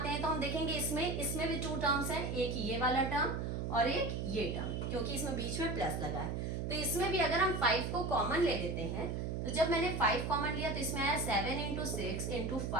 हैं तो हम देखेंगे इसमें भी 2 टर्म्स हैं, एक ये वाला टर्म और एक ये टर्म, क्योंकि इसमें बीच में प्लस लगा है। तो इसमें भी अगर हम 5 को कॉमन ले लेते हैं, तो जब मैंने 5 कॉमन लिया तो इसमें आया 7 into 6 into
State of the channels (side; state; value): right; noise; hum, 2 dB below the sound